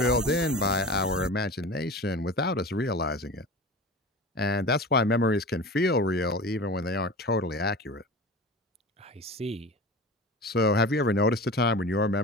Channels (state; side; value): normal; both; correlation 0.34